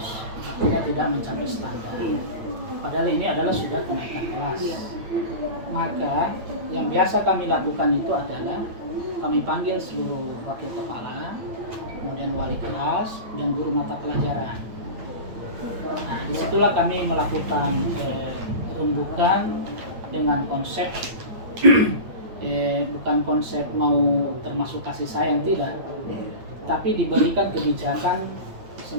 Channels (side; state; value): left; late; 9.1 ms